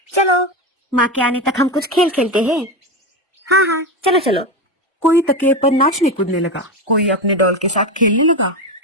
चलो, माँ के आने तक हम कुछ खेल खेलते हैं। हाँ, चलो चलो। कोई तकिए पर नाचने कूदने लगा, कोई अपने डॉल के साथ खेलने लगा,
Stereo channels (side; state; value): both; normal; correlation 0.17